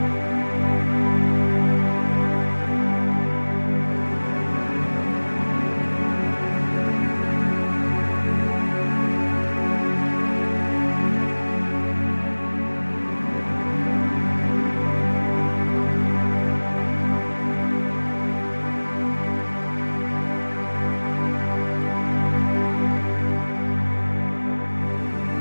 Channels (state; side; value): inverted; both; correlation -1.00